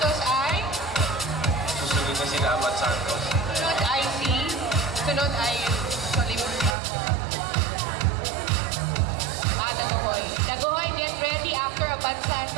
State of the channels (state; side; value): drops out; left; at 6.8 s